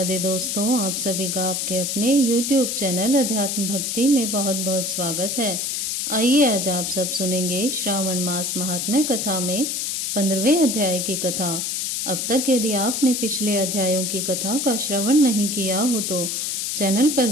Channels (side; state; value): left; noise; hiss, 1 dB below the sound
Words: दोस्तों, आप सभी का आपके अपने YouTube चैनल अध्यात्म भक्ति में बहुत बहुत स्वागत है। आइए आज आप सब सुनेंगे श्रावण मास महात्म्य कथा में 15वें अध्याय की कथा। अब तक यदि आपने पिछले अध्यायों की कथा का श्रवण नहीं किया हो तो चैनल